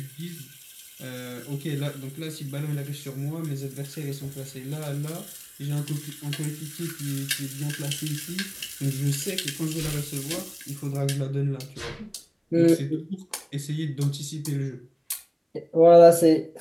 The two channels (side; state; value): both; identical; correlation 1.00